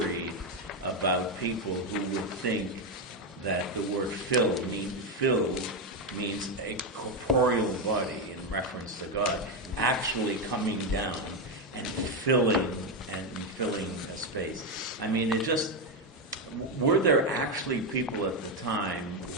about people who would think that the word filled means a corporeal body in reference to God actually coming down and filling a space. I mean, were there actually people at the time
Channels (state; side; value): normal; both; correlation 0.07